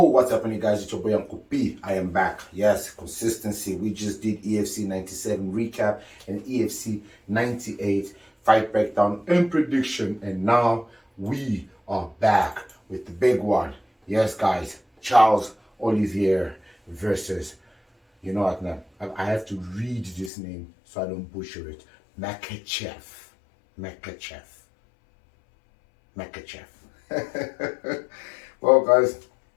happening, guys? It's your boy Uncle P. I am back. Yes, consistency. We just did EFC 97 recap and EFC 98 fight breakdown and prediction, and now we are back with the big one. Yes, guys, Charles Oliveira versus, you know what, now I have to read this name so I don't butcher it. Makhachev. Well, guys,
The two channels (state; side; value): drops out; right; at 20.3 s